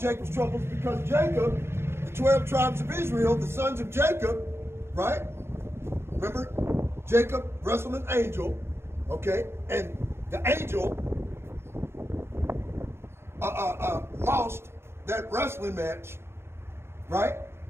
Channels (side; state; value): left; late; 0.12 ms